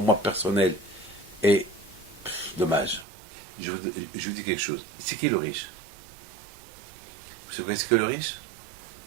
moi personnel. Et, dommage. Je vous dis quelque chose. C'est qui le riche? Vous savez ce que le riche?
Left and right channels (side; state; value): left; drops out; at 3.1 s